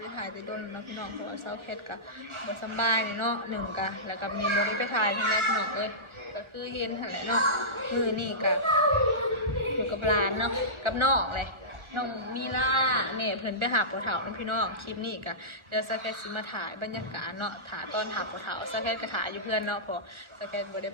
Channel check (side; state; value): left; late; 1.4 ms